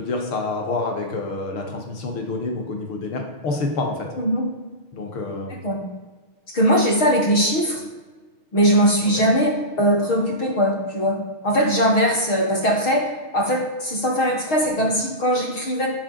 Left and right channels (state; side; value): late; right; 6.4 ms